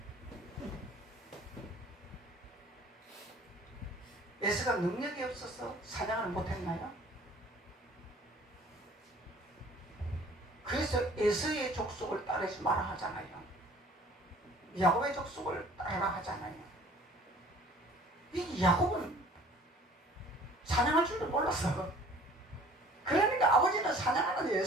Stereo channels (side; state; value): both; normal; correlation 0.51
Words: 에서가 능력이 없어서 사냥을 못했나요? 그래서 에서의 족속을 따르지 마라 하잖아요. 야곱의 족속을 따르라 하잖아요. 이 야곱은 사냥할 줄도 몰랐어. 그러니까 아버지는 사냥하는